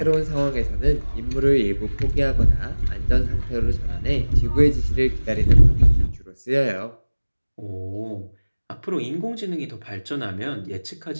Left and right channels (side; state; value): both; inverted; correlation -1.00